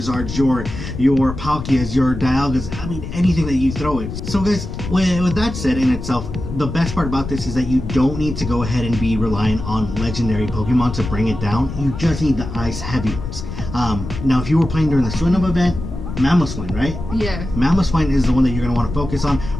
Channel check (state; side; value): noise; left; rumble, 8 dB below the sound